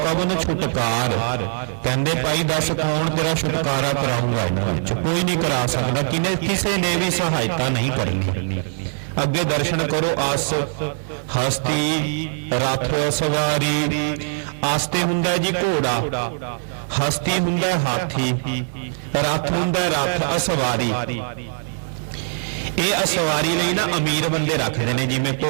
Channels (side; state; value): left; silent; 64 dB below the other